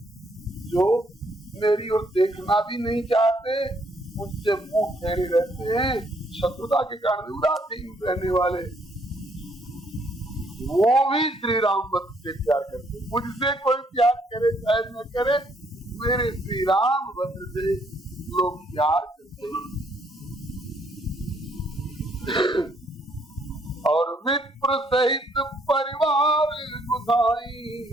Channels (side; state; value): both; normal; correlation 0.68